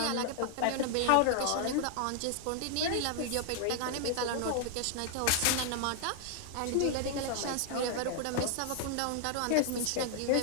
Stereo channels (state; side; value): different; both; correlation 0.00